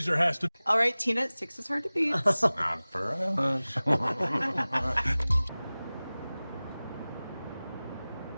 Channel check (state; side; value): inverted; both; correlation -0.98